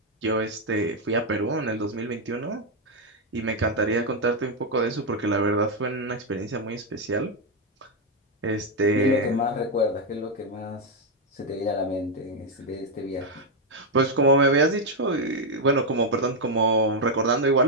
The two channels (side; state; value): both; normal; correlation 0.01